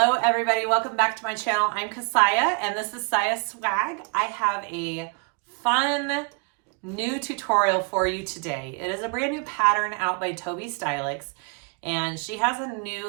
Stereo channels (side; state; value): left; quieter; 34.8 dB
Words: everybody, welcome back to my channel. I'm Kassiah and this is SiahSwag. I have a fun new tutorial for you today. It is a brand new pattern out by Tobi Stylx, and she has a new